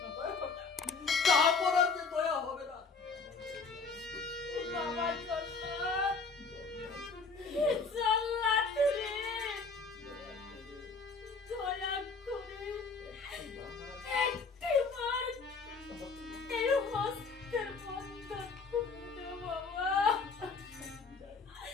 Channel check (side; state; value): right; quieter; 4.4 dB